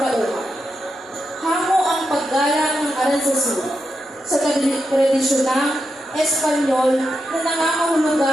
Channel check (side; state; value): both; normal; correlation 0.86